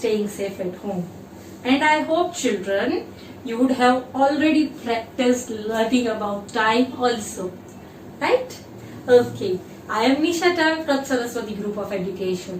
safe at home. And I hope, children, you would have already practiced learning about time also. Right? Okay. I am Nisha Tam from Saraswati Group of Education.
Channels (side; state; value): both; identical; correlation 1.00